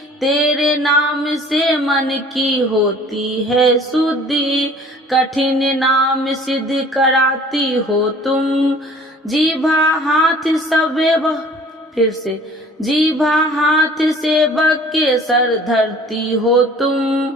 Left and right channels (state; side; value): normal; both; correlation 0.50